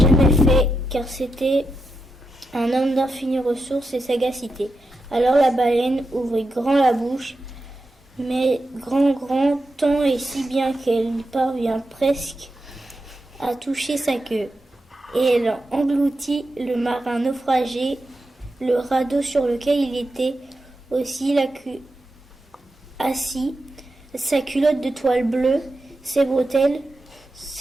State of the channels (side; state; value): both; normal; correlation 0.88